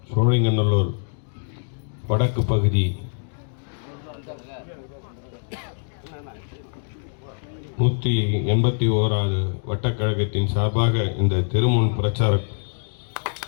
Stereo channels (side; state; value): right; silent; digital silence